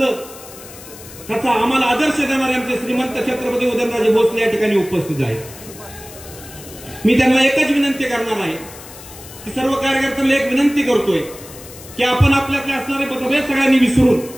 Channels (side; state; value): left; noise; hiss, 17 dB below the sound